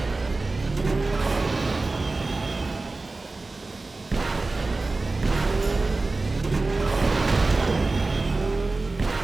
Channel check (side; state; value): left; quieter; 3.4 dB